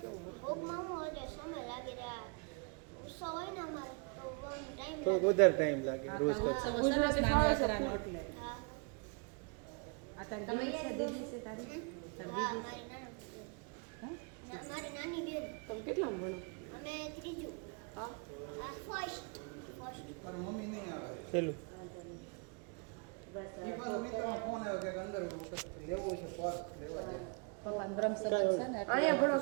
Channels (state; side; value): quieter; left; 35.3 dB